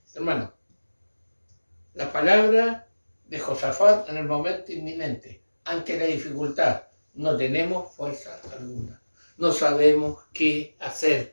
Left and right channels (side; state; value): both; inverted; correlation -1.00